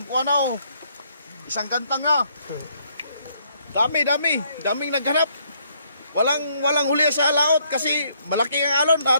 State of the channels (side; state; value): both; inverted; correlation -0.69